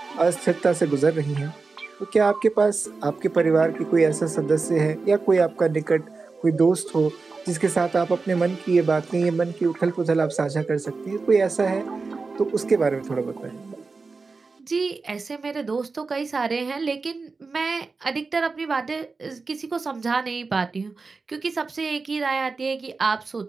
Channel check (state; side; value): quieter; left; 4.2 dB